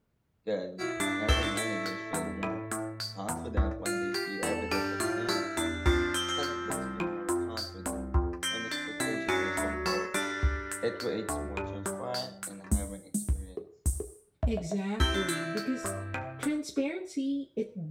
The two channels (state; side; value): identical; both; correlation 1.00